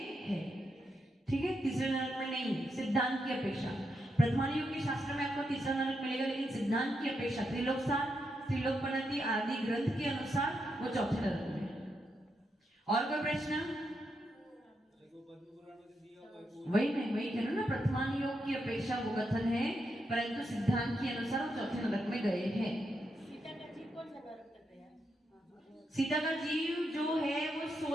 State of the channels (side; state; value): both; normal; correlation 0.83